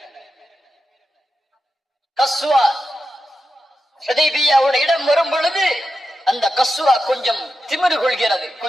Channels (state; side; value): normal; both; correlation 0.90